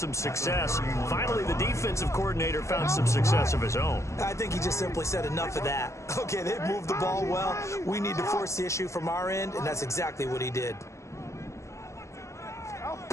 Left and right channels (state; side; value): late; right; 0.14 ms